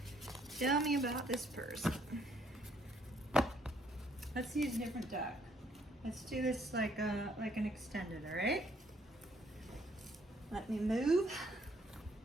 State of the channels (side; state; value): both; normal; correlation 0.67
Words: Tell me about this person. Let's use a different deck. Let's do this like an extended, all right? Let me move.